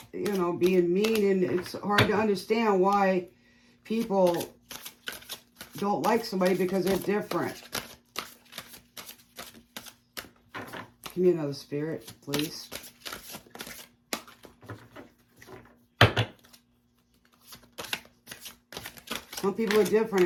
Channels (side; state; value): both; identical; correlation 1.00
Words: you know, being mean, and it's hard to understand why people don't like somebody because they're different. Give me another spirit, please. Some people are different